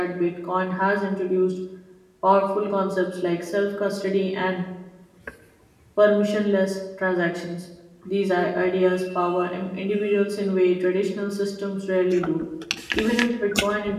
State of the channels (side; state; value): both; identical; correlation 1.00